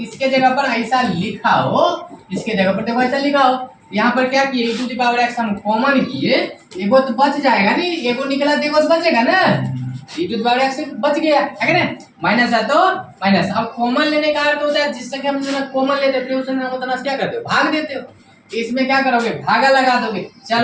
जगह पर ऐसा लिखा हो, इसके जगह पर देखो ऐसा लिखा हो, यहाँ पर क्या किए, e⁻x हम कॉमन किए, एगो तो बच जाएगा नहीं, एगो निकला तो एगो तो बचेगा ना, e⁻x बच गया है ना, माइनस है तो माइनस। अब कॉमन लेने का अर्थ होता है जिस संख्या में जितना कॉमन लेते हैं फिर उस संख्या में उतना क्या करते हो, भाग देते हो। इसमें क्या करोगे, भागा लगा दोगे,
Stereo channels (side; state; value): both; identical; correlation 1.00